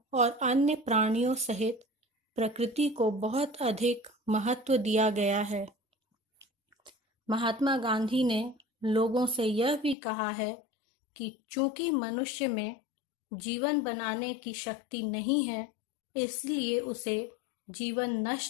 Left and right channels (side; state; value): right; drops out; at 10.0 s